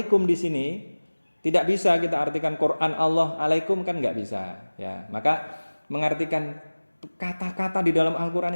di sini tidak bisa kita artikan Quran Allah alaikum, kan nggak bisa ya. Maka mengartikan kata-kata di dalam Al-Qur'an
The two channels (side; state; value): both; inverted; correlation -1.00